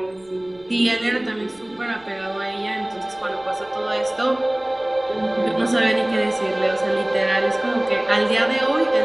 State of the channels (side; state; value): left; noise; rumble, 29 dB below the sound